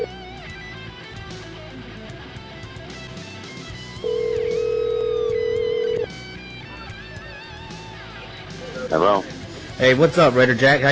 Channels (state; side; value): identical; both; correlation 1.00